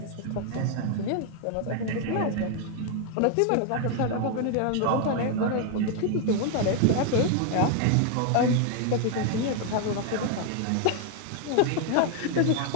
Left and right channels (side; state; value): both; different; correlation 0.00